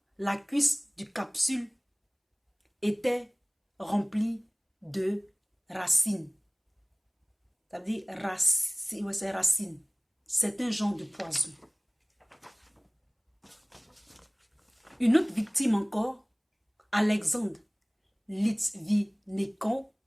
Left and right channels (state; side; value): identical; both; correlation 1.00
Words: la cuisse du capsule était remplie de racines. C'est-à-dire, c'est racine. C'est un genre de poison. Une autre victime encore, Alexandre Litvinenko,